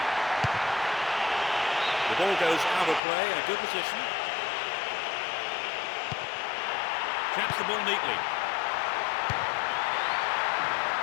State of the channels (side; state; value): right; drops out; at 3.0 s